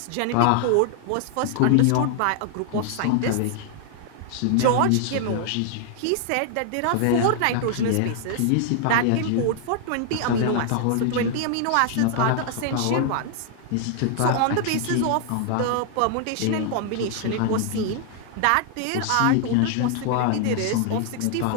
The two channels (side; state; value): both; different; correlation 0.00